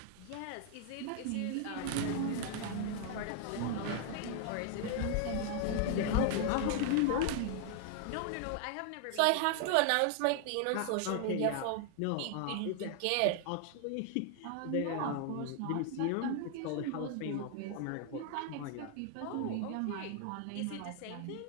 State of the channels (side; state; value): both; different; correlation 0.00